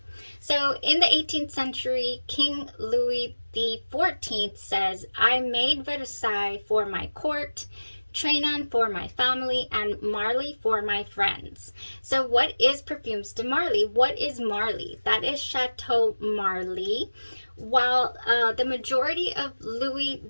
So in the 18th century, King Louis XIV says, I made Versailles for my court, Trianon for my family, and Marly for my friends. So what is Parfumes de Marly? What is Marly? That is Chateau Marly. While the majority of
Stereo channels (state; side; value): inverted; both; correlation -1.00